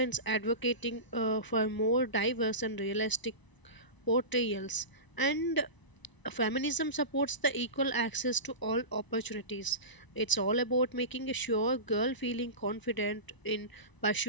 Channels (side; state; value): right; late; 1.0 ms